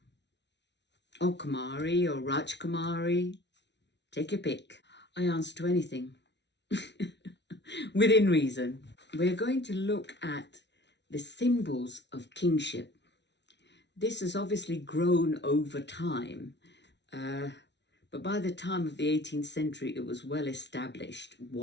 or Kumari, or Raj Kumari. Take your pick. I answer to anything, within reason. We're going to look at the symbols of kingship. This has obviously grown over time, but by the time of the 18th century, it was well established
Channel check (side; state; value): right; late; 0.51 ms